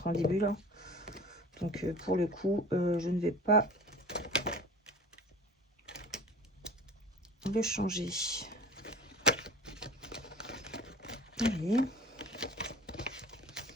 en début là. Donc pour le coup, je ne vais pas le changer. Allez.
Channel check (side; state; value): both; normal; correlation 0.40